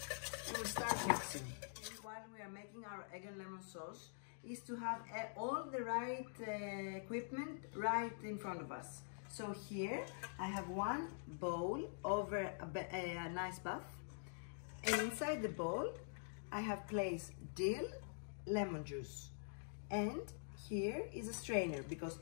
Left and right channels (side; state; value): right; silent; digital silence